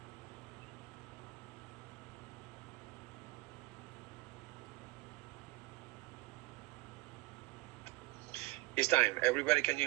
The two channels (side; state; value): left; quieter; 21.1 dB